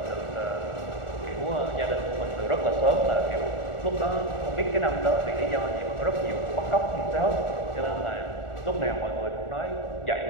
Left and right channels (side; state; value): right; late; 1.4 ms